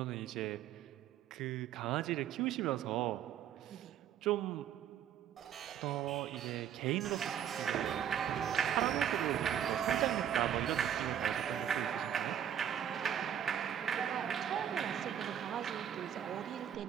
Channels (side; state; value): left; quieter; 9.6 dB